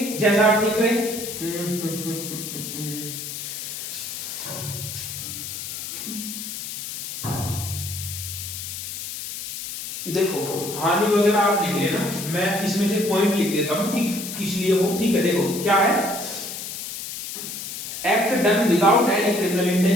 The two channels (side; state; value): left; noise; hiss, 7 dB below the sound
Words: जैसा आप ठीक रहे। हानि वगैरह आप लिख लेना, मैं इसमें से पॉइंट लिख देता हूं कि किस लिए हो। ठीक है, देखो क्या है, act done without any criminal